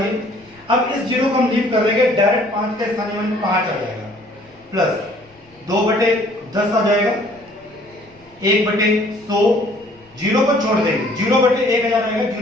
अब इस जीरो को हम लीव कर देंगे, डायरेक्ट 5 का स्थानीय मान 5 आ जाएगा प्लस 2/10 आ जाएगा, 1/100 जीरो को छोड़ देंगे, 0/1000 आएगा,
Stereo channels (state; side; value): noise; left; rumble, 30 dB below the sound